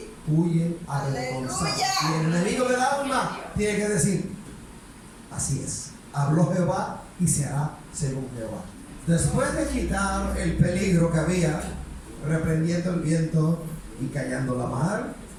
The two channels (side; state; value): both; identical; correlation 1.00